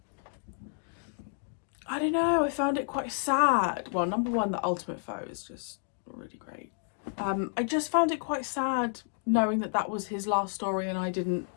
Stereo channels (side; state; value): right; silent; digital silence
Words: I don't know, I found it quite sad. Well, number one, the Ultimate Faux is just really great. I just found it quite sad knowing that that was his last story and I didn't